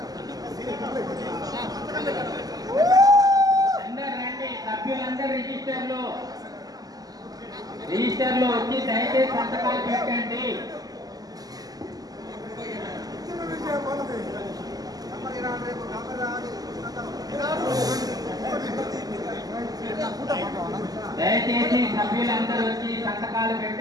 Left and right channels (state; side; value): late; left; 0.18 ms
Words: సభ్యులందరూ రిజిస్టర్లో వచ్చి దయచేసి సంతకాలు పెట్టండి. దయచేసి సభ్యులందరూ వచ్చి సంతకాలు